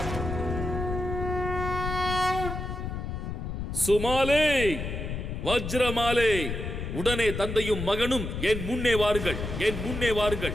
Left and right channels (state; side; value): noise; left; rumble, 5 dB below the sound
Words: சுமாலே, வஜ்ரமாலே, உடனே தந்தையும் மகனும் என் முன்னே வாருங்கள், என் முன்னே